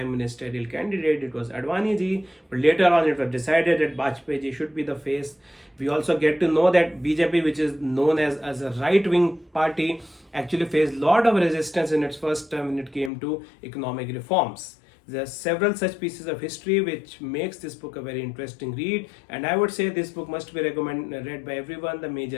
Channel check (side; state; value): right; drops out; at 13.1 s